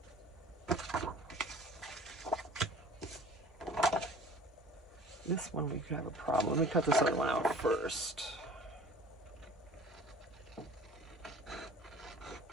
This one we could have a problem. Let me cut this other one out first.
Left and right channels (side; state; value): both; normal; correlation 0.47